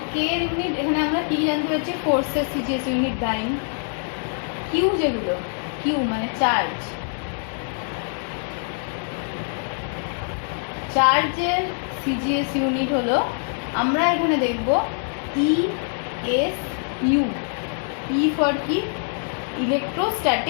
কে এর ইউনিট এখানে আমরা কি জানতে পারছি? ফোর্সের সিজিএস ইউনিট ডাইন। কিউ যেগুলো, কিউ মানে চার্জ, চার্জের সিজিএস ইউনিট হলো, আমরা এখানে দেখব E S U. E for কি?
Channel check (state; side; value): silent; right; 63 dB below the other